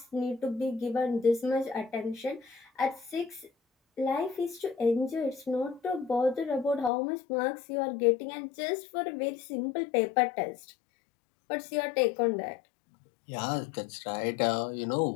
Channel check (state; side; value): drops out; right; at 6.9 s